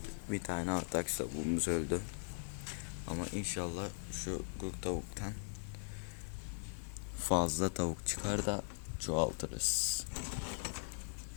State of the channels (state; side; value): silent; right; digital silence